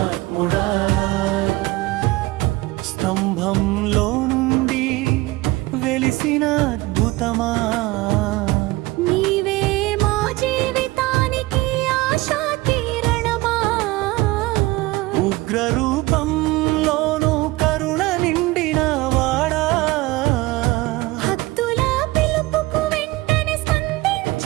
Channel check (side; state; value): left; quieter; 20.1 dB